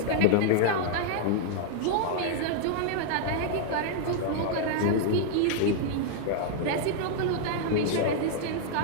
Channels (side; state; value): both; different; correlation -0.01